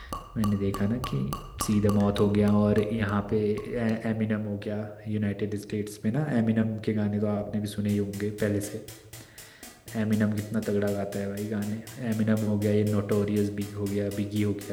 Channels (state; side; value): identical; both; correlation 1.00